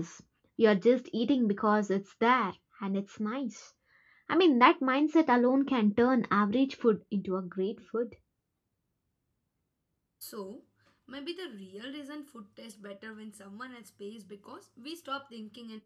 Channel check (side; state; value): both; identical; correlation 1.00